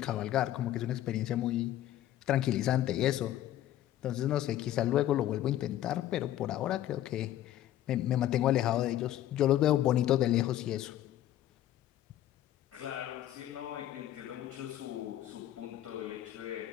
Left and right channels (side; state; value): right; quieter; 12.9 dB